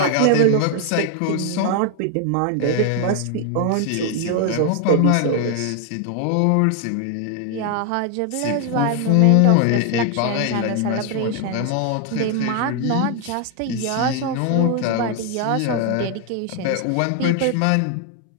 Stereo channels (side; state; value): both; different; correlation 0.00